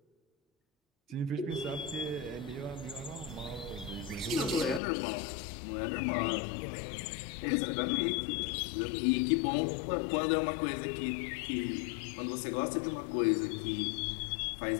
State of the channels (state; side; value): drops out; right; at 4.8 s